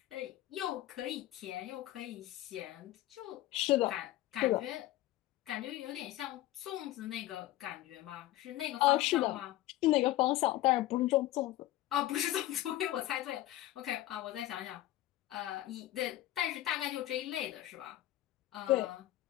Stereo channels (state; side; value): quieter; right; 15.3 dB